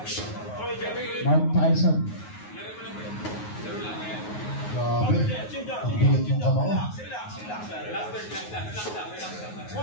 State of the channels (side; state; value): right; late; 9.5 ms